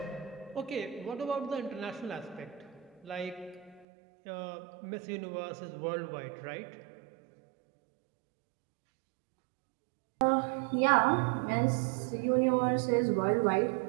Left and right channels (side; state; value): left; drops out; at 3.9 s